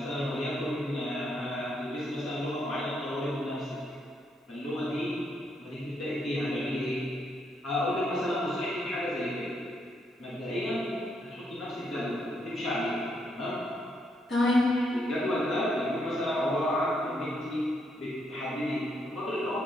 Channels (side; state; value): both; normal; correlation 0.76